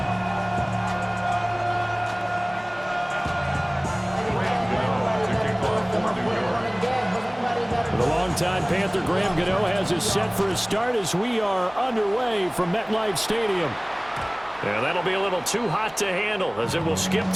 The longtime Panther Graham Gano has us set for a start as we are underway from MetLife Stadium. Yeah, that'll be a little too hot to handle as it will skip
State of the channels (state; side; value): noise; right; hum, 26 dB below the sound